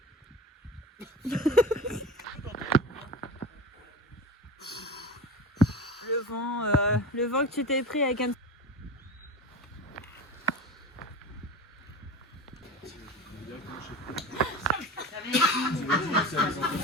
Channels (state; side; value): normal; both; correlation 0.31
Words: Le vent que tu t'es pris avec un...